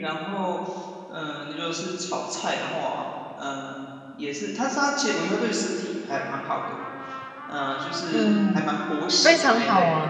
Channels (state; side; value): identical; both; correlation 1.00